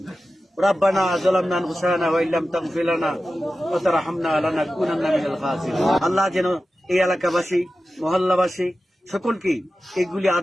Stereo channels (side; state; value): both; normal; correlation 0.94